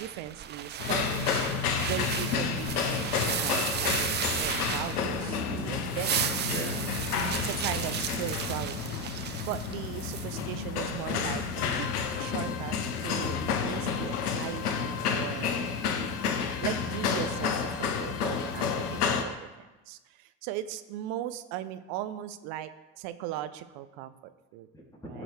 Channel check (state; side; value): normal; both; correlation 0.11